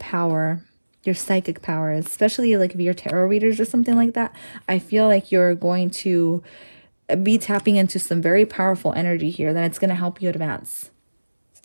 your psychic power, especially like if you're tarot readers or something like that. I feel like you're going to be tapping into some very powerful energy here that it's going to help you advance.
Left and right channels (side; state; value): both; inverted; correlation -1.00